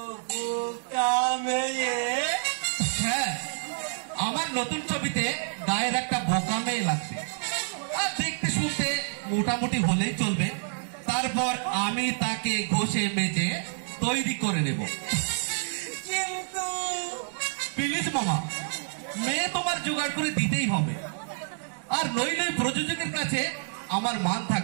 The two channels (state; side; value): silent; left; 59 dB below the other